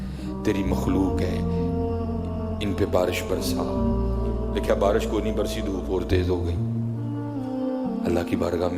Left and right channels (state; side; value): identical; both; correlation 1.00